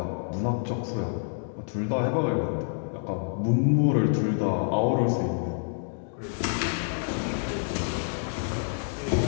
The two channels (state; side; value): silent; right; digital silence